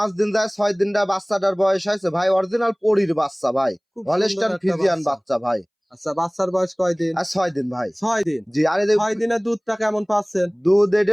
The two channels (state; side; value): identical; both; correlation 1.00